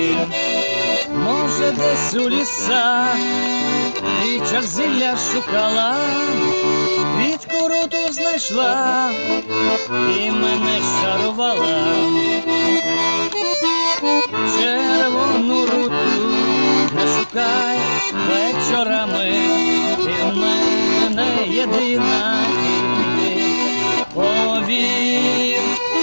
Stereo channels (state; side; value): inverted; both; correlation -1.00